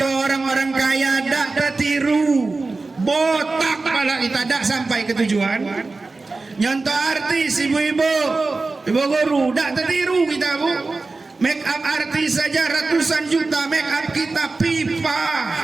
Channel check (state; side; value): quieter; left; 3.7 dB